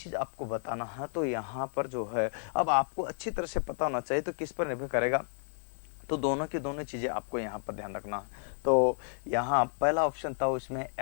आपको बताना है। तो यहाँ पर जो है अब आपको अच्छी तरह से पता होना चाहिए, तो किस पर निर्भर करेगा, तो दोनों की दोनों चीज़ें आपको यहाँ पर ध्यान रखना है। तो यहाँ पहला ऑप्शन था उसमें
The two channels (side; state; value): right; silent; digital silence